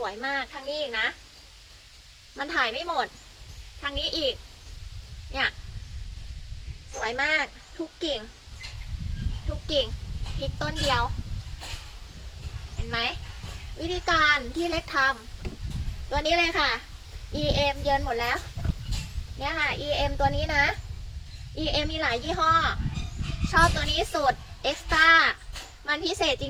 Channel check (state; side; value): identical; both; correlation 1.00